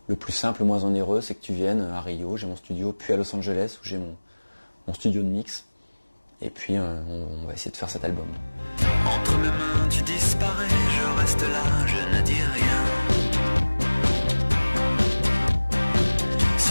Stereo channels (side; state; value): both; inverted; correlation -1.00